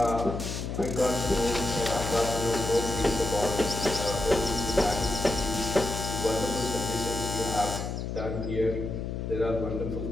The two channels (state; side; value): noise; left; hum, 4 dB below the sound